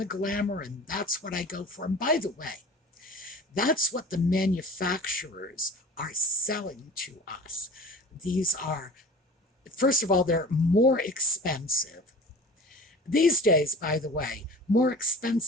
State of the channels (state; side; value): normal; both; correlation 0.40